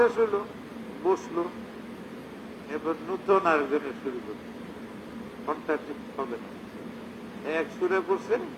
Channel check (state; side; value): identical; both; correlation 1.00